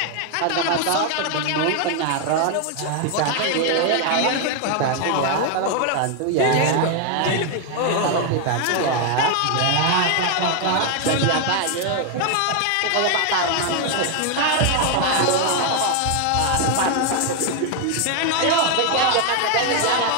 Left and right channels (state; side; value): different; both; correlation 0.01